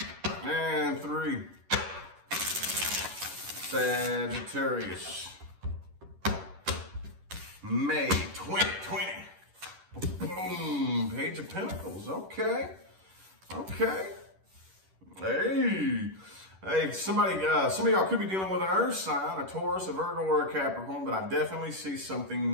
and 3. Sagittarius. May 2020. Boom. Page of Pentacles. Okay. Okay. Hey, some of y'all could be dealing with an earth sign, a Taurus, a Virgo, or a Capricorn, but I definitely see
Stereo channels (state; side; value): late; left; 11 ms